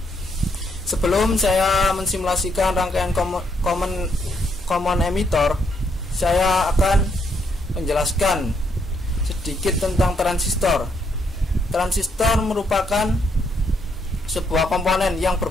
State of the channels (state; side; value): normal; both; correlation 0.74